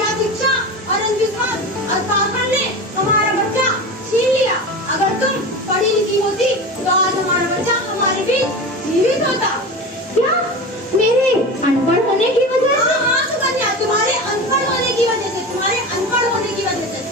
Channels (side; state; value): both; normal; correlation 0.28